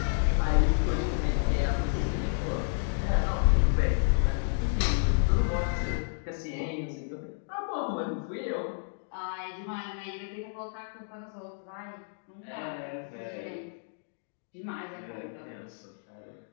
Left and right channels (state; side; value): silent; right; digital silence